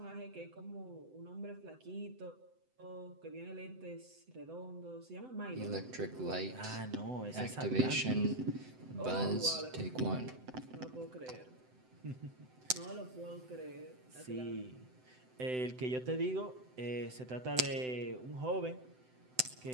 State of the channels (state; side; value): late; left; 7.9 ms